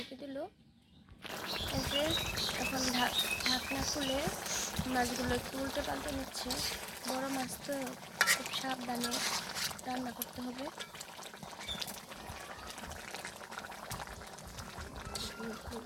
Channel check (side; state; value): both; identical; correlation 1.00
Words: দিল। এই যে এখন ঢাকনা খুলে মাছগুলো একটু উল্টে পাল্টে নিচ্ছে। বড় মাছ তো খুব সাবধানে রান্না করতে হবে।